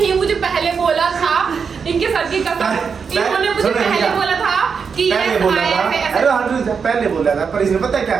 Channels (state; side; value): quieter; left; 6.0 dB